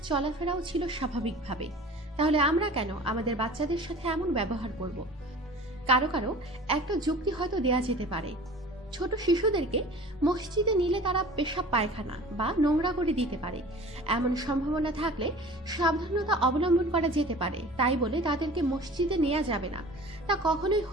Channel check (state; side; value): normal; both; correlation 0.43